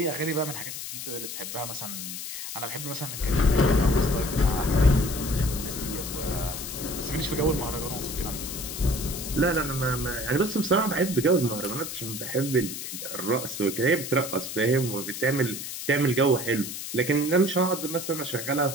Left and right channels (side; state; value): left; noise; hiss, 7 dB below the sound